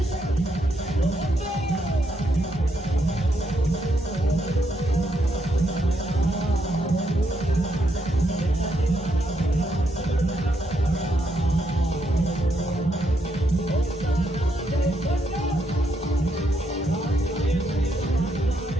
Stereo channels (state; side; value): normal; both; correlation 0.77